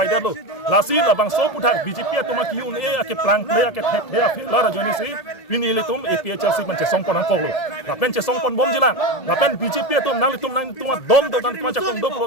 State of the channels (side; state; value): right; late; 1.8 ms